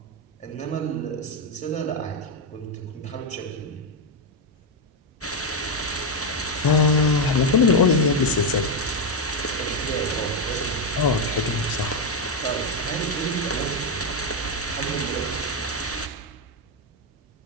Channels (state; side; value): normal; both; correlation 0.04